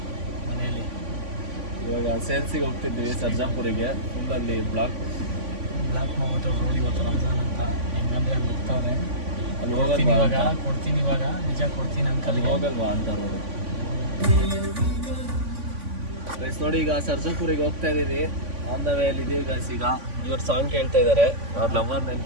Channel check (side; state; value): left; late; 3.5 ms